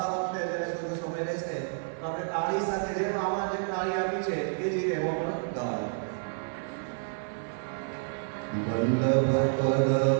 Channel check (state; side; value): silent; left; 58 dB below the other